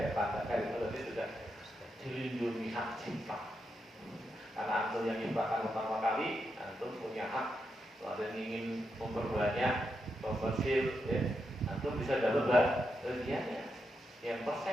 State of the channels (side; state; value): both; normal; correlation 0.84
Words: tanda kayak itu tadi sudah dilindungi hak cipta. Karena antum yang ciptakan pertama kali, antum punya hak. Kalau ada yang ingin memperbanyak komersil, ya, antum bisa dapat bagiannya, yang